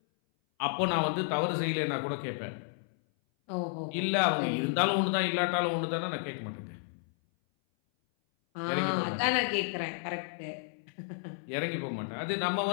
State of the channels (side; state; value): right; silent; 57 dB below the other